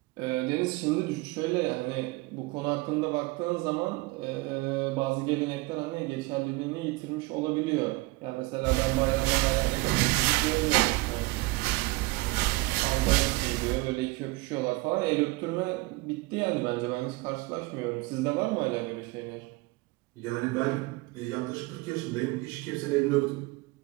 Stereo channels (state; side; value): quieter; left; 22.4 dB